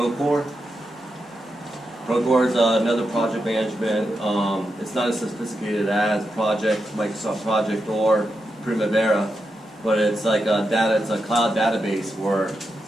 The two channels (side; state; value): both; normal; correlation 0.87